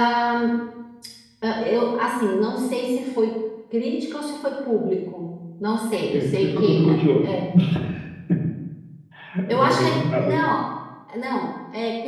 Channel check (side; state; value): both; identical; correlation 1.00